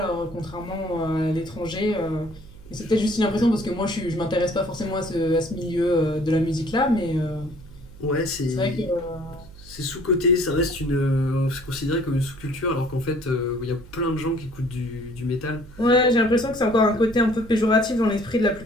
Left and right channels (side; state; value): right; noise; hum, 19 dB below the sound